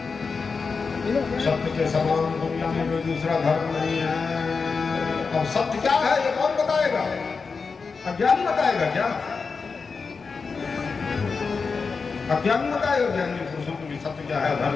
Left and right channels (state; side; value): quieter; right; 4.9 dB